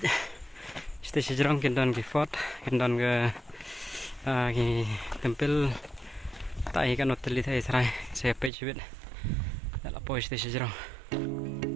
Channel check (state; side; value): drops out; left; at 8.5 s